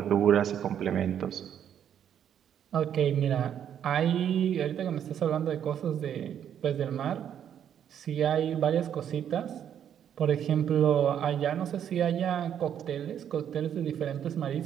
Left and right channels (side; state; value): left; quieter; 9.3 dB